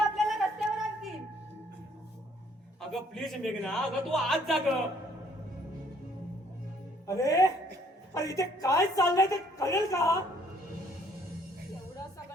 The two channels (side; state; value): both; normal; correlation 0.63